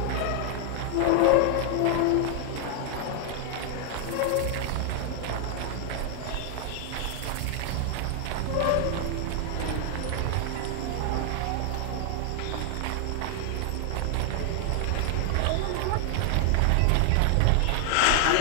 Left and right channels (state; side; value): different; both; correlation 0.00